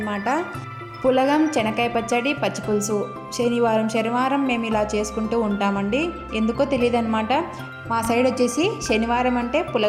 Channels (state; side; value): identical; both; correlation 1.00